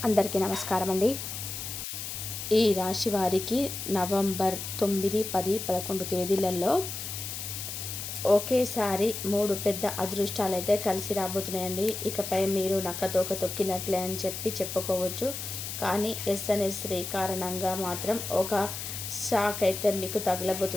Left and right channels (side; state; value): left; noise; hiss, 6 dB below the sound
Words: అందరికీ నమస్కారం అండి. ఈ రాశి వారికి నవంబర్ 9, 10, 11 తేదీలలో ఒకేసారి 3 పెద్ద అదృష్టాలు అయితే కలిసి రాబోతున్నాయండి. ఇకపై మీరు నక్కతోక తొక్కినట్లే అని చెప్పుకోవచ్చు. కానీ ఎస్ఎన్ఎస్ శ్రీ కారణంగా మాత్రం ఒక షాక్ అయితే మీకు